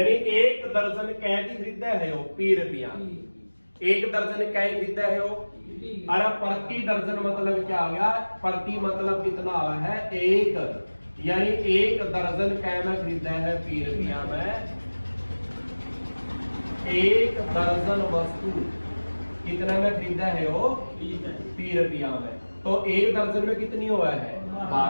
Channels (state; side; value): inverted; both; correlation -1.00